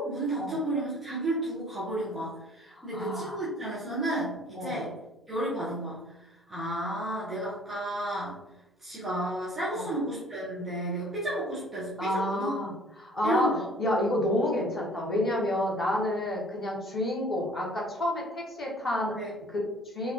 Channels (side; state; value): both; normal; correlation 0.53